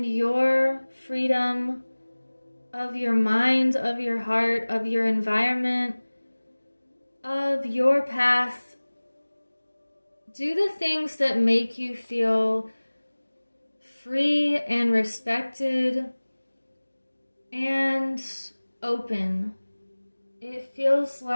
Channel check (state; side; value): inverted; both; correlation -1.00